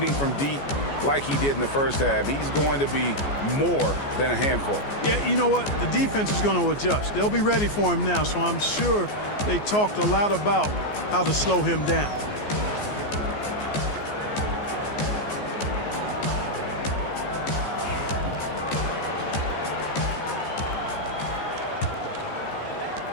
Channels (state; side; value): late; right; 14 ms